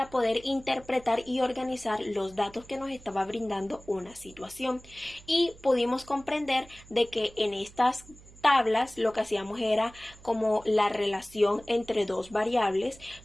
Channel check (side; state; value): right; noise; hum, 22 dB below the sound